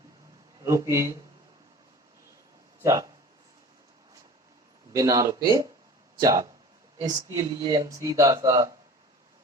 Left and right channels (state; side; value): normal; both; correlation 0.41